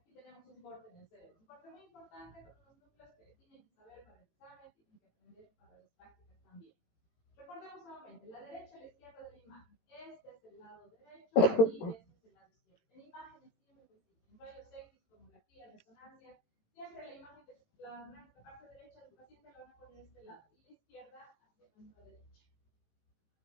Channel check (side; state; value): right; late; 18 ms